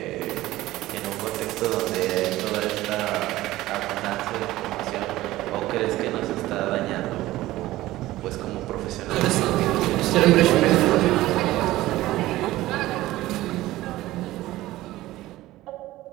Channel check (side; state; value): left; quieter; 16.7 dB